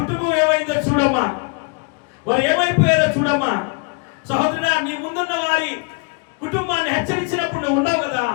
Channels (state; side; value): quieter; right; 33.2 dB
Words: ఏమైందో చూడమ్మా, వారు ఏమైపోయారో చూడమ్మా. సహోదరుడా, నీ ముందున్న వారి కుటుంబాన్ని హెచ్చరించినప్పుడు నువ్వు ఉన్నావు కదా,